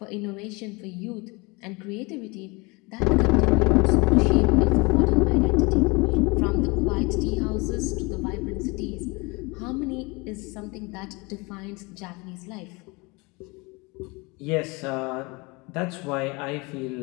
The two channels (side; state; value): right; quieter; 26.7 dB